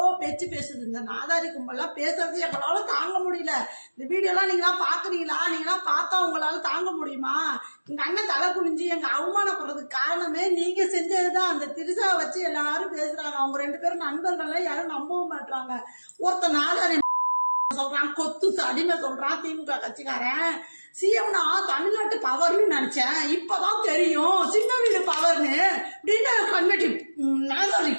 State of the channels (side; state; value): both; inverted; correlation -1.00